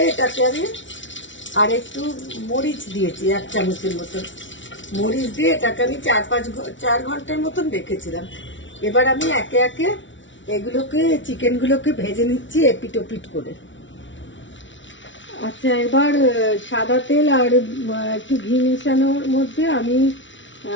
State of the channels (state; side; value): late; right; 0.55 ms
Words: এটাকে আমি আর একটু মরিচ দিয়েছি 1 চামচের মতন। মরিচ দিয়ে এটাকে আমি 4 ঘন্টার মতন রেখেছিলাম। এবার আমি একে একে এগুলোকে চিকেনগুলোকে ভেজে নিচ্ছি এপিট ওপিট করে। আচ্ছা, এবার সাদা তেল আর একটু ঘি মেশানোর মধ্যে আমি